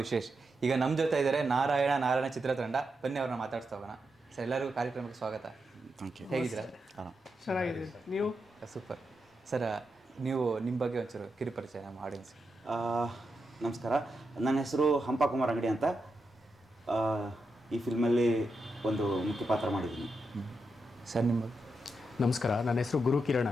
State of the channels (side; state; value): both; normal; correlation 0.86